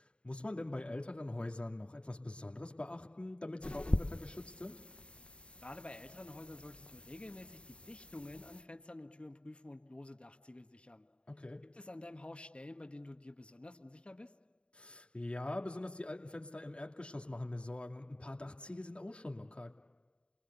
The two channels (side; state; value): right; late; 0.055 ms